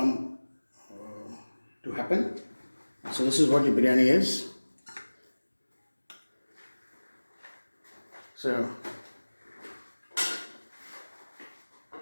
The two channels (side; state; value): both; inverted; correlation -1.00